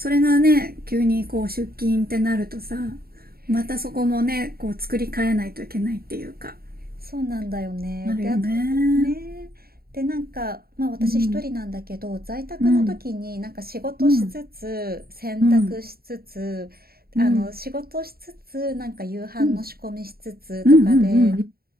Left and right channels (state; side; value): late; left; 0.44 ms